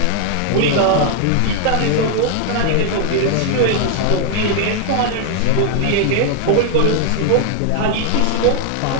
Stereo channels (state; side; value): different; both; correlation 0.00